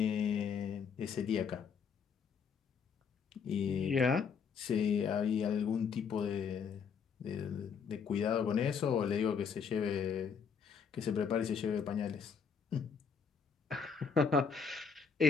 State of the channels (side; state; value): right; quieter; 6.2 dB